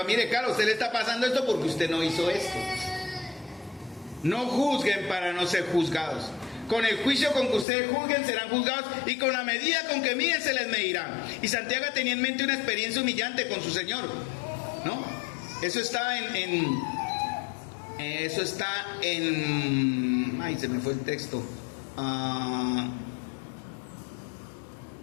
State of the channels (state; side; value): drops out; right; at 7.7 s